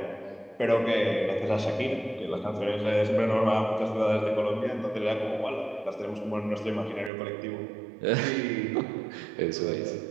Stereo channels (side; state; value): left; drops out; at 7.1 s